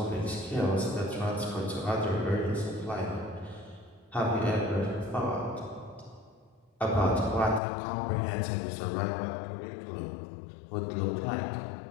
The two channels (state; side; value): drops out; right; at 7.6 s